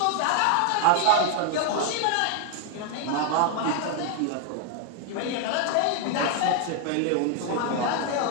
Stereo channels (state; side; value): different; both; correlation 0.00